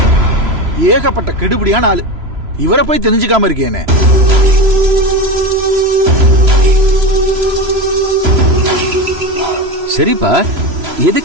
ஏகப்பட்ட கெடுபடியான ஆளு. இவரை போய் தெரிஞ்சுக்காம இருக்கேனே. சரிப்பா,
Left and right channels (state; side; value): late; left; 3.0 ms